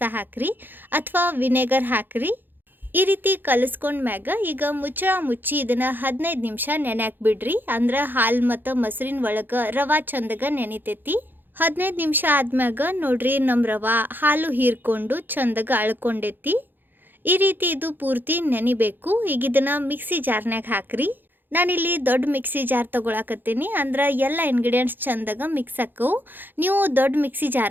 ಹಾಕ್ರಿ ಅಥವಾ ವಿನೆಗರ್ ಹಾಕ್ರಿ. ಈ ರೀತಿ ಕಲಿಸ್ಕೊಂಡ್ಮ್ಯಾಗ ಈಗ ಮುಚ್ಚಿ ಇದನ್ನು 15 ನಿಮಿಷ ನೆನೆಯಾಕ್ ಬಿಡ್ರಿ. ಅಂದ್ರೆ ಹಾಲು ಮತ್ತು ಮೊಸರಿನ ಒಳಗೆ ರವೆ ಚಂದಗ ನೆನಿತೈತಿ. 15 ನಿಮಿಷ ಆದ್ಮ್ಯಾಗ ನೋಡ್ರಿ, ನಮ್ಮ ರವೆ ಹಾಲು ಹೀರ್ಕೊಂಡು ಚಂದಗ ಅಳ್ಕೊಂಡೈತಿ. ಈ ರೀತಿ ಇದು ಪೂರ್ತಿ ನೆನಿಬೇಕು. ಈಗ ಇದನ್ನು ಮಿಕ್ಸಿ ಜಾರ್ನಾಗ ಹಾಕ್ರಿ. ನಾನಿಲ್ಲಿ ದೊಡ್ಡ ಮಿಕ್ಸಿ ಜಾರ್ ತೊಗೊಳಕತ್ತೀನಿ, ಅಂದ್ರೆ ಎಲ್ಲ ಇಂಗ್ರೀಡಿಯೆಂಟ್ಸ್ ಚಂದಾಗ ಮಿಕ್ಸ್ ಹಾಕವು. ನೀವು ದೊಡ್ಡ ಮಿಕ್ಸಿ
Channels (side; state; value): left; late; 0.092 ms